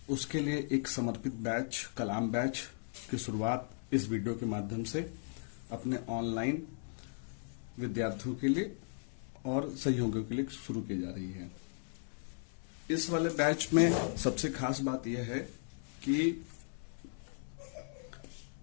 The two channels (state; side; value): silent; right; 53 dB below the other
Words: उसके लिए एक समर्पित बैच कलाम बैच की शुरुआत इस वीडियो के माध्यम से अपने ऑनलाइन विद्यार्थियों के लिए और सहयोगियों के लिए शुरू की जा रही है। इस वाले बैच में सबसे खास बात यह है कि